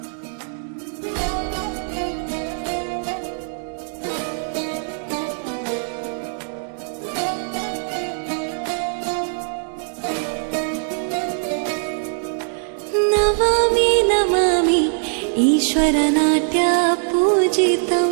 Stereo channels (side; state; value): left; silent; digital silence